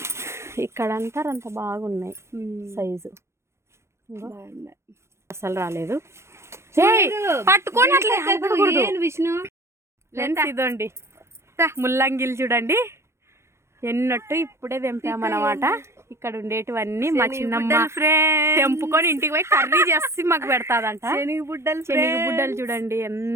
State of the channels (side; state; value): left; late; 0.13 ms